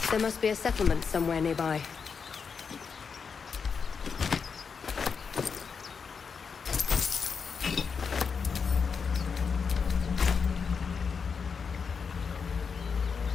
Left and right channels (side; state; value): right; quieter; 5.8 dB